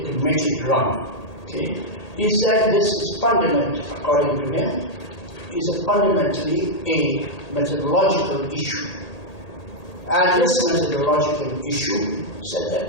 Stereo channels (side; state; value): right; late; 1.8 ms